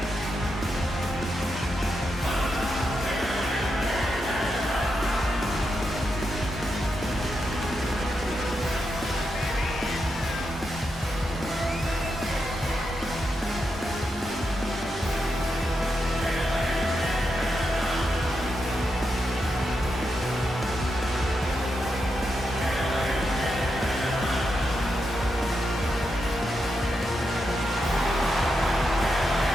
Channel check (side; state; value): both; normal; correlation 0.85